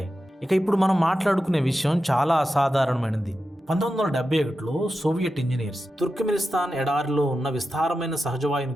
ఇక ఇప్పుడు మనం మాట్లాడుకునే విషయం చాలా అసాధారణమైనది. 1971లో సోవియట్ ఇంజనీర్స్ తుర్క్మెనిస్తాన్ ఎడారిలో ఉన్న విస్తారమైన సహజవాయు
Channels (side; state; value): both; normal; correlation 0.91